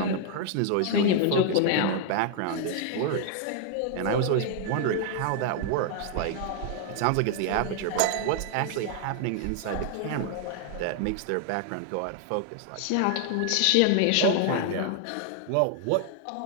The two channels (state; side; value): different; both; correlation 0.00